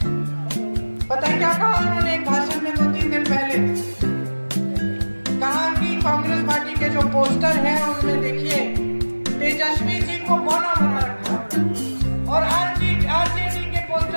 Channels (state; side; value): inverted; both; correlation -1.00